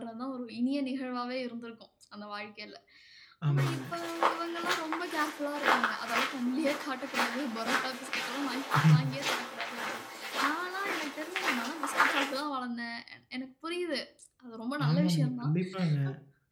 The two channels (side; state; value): both; identical; correlation 1.00